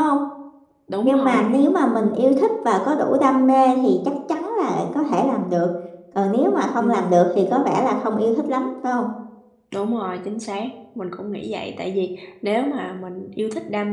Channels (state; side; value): identical; both; correlation 1.00